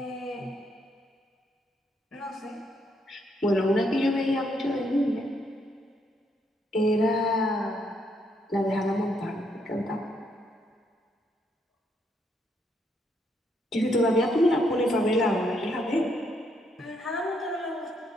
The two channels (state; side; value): normal; both; correlation 0.74